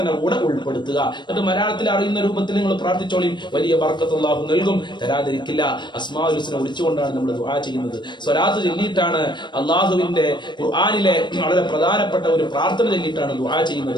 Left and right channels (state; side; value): late; right; 0.22 ms